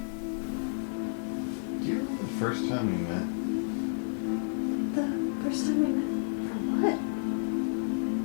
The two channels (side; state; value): right; silent; digital silence